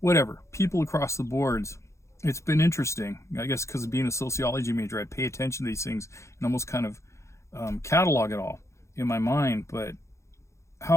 people across the boards. It's been interesting, I guess, because of being a sociology major. I pay attention to these things and almost kind of catalog it all in my mind. But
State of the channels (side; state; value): right; late; 0.14 ms